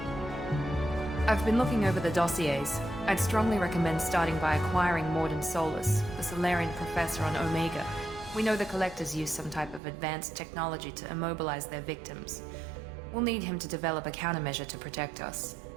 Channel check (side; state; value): left; drops out; at 9.8 s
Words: I've been looking over the dossiers. I'd strongly recommend starting by acquiring Morden Solus, the Solarian professor on Omega. We know the Collectors use some type of advanced technology to immobilize their victims. We'll need him to develop a countermeasure to protect us.